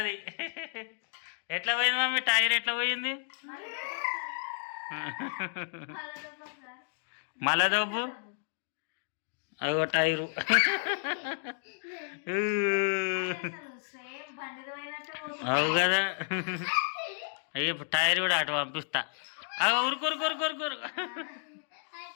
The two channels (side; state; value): right; silent; digital silence